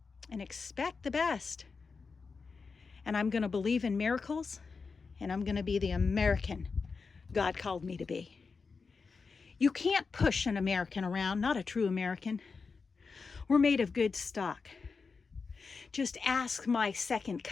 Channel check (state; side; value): quieter; right; 4.8 dB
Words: and expect the best. And I'm going to believe in miracles, and I'm going to be the American God called me to be. You can't push an American around, not a true American. We're made of good stock. Just ask my second